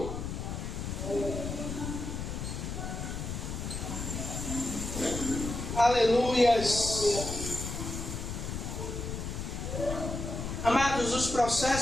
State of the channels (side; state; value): left; noise; rumble, 5 dB below the sound